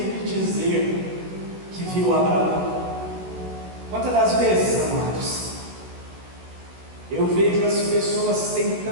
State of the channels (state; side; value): late; left; 16 ms